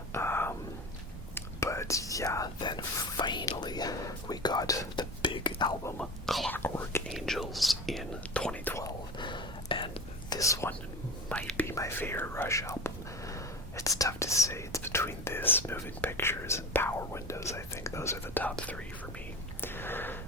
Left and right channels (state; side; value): normal; both; correlation 0.31